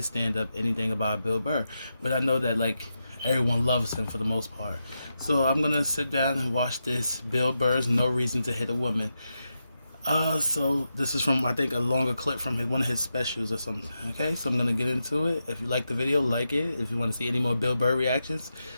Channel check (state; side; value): inverted; both; correlation -0.88